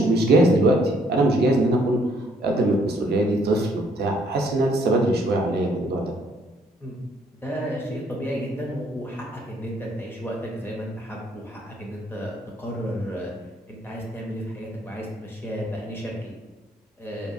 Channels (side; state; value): both; normal; correlation 0.67